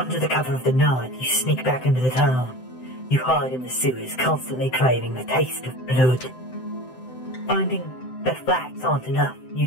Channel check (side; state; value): right; late; 7.8 ms